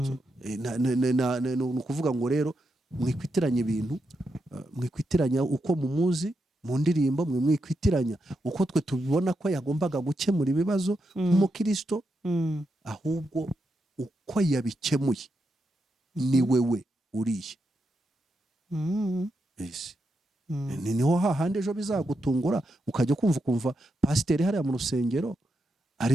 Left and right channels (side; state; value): both; normal; correlation 0.84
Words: ukuvuga ngo rero mwikwitiranya ibintu, mwikwitiranya uko mumuzi mu ndirimbo, mwikwitiranya uko twe tubibona ko yagombaga gukemura ibibazo nk'umukristo, ahubwo uko yabikemuye ni wewe uriye. Yes. Niho hahandi ejo bizagutungura ukajya kumva pasiteri hariya mu rusengero